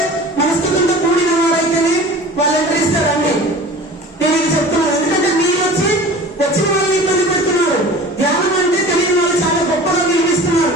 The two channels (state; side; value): normal; both; correlation 0.40